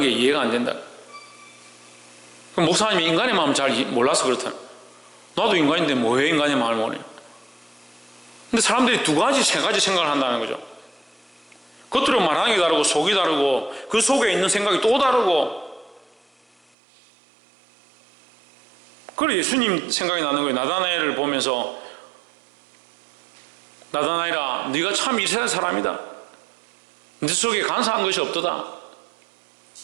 이해가 안 된다. 목사님이 인간의 마음을 잘 몰라서 그렇다. 나도 인간인데 뭐해 인간의 마음을 모르냐. 근데 사람들이 두 가지, 세 가지 생각을 한다는 거죠. 겉으로 말하는 게 다르고 속이 다르고 그 속에 있는 생각이 또 다르고, 그래 예수님 생각이 나는 거예요. 나다나엘을 보면서 나다나엘아 네가 참 이스라엘 사람이다. 네 속에 간사한 것이 없도다.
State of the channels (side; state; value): left; drops out; at 16.6 s